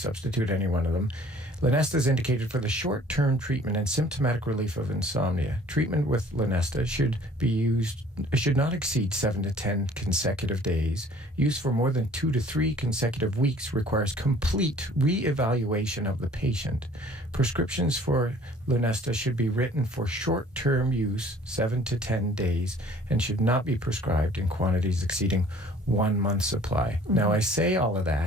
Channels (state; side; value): normal; both; correlation 0.53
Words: any one of them. Lunesta is indicated for the short-term treatment and symptomatic relief of insomnia. Treatment with Lunesta should not exceed 7 to 10 consecutive days. Use for more than 2 to 3 consecutive weeks requires complete re-evaluation of the patient. Prescriptions for Lunesta should be written for short-term use, 7 to 10 days, and should not be prescribed in quantities exceeding 1 month's supply. Mm-hmm. Now, I say all of